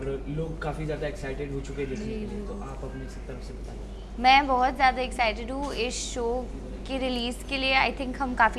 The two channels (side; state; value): both; identical; correlation 1.00